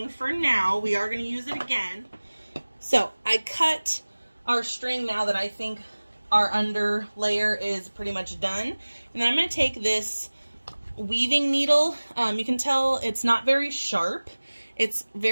for now. We are going to use it again. So I cut our string now that I think our under layer is pretty much done. And then I'm going to take this weaving needle. You can tell it's not very sharp. It's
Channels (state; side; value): inverted; both; correlation -1.00